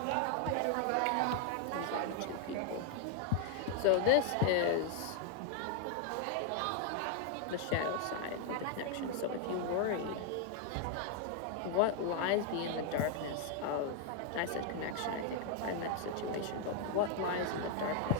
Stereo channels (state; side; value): different; both; correlation 0.00